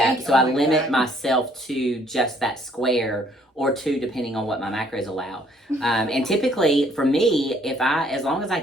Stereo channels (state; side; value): normal; both; correlation 0.63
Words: So I limit myself to just that square, or two, depending on what my macros allow. And typically, for me, as long as